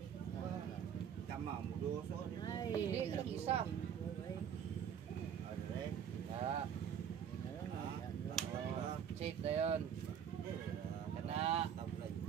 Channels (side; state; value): left; quieter; 8.5 dB